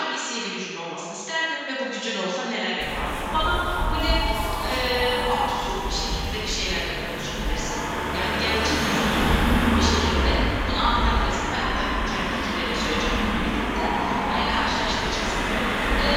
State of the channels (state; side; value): identical; both; correlation 1.00